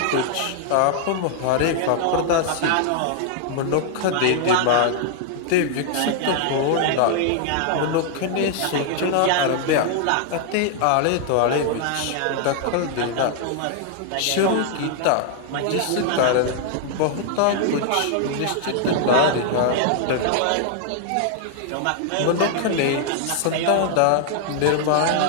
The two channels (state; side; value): different; both; correlation 0.00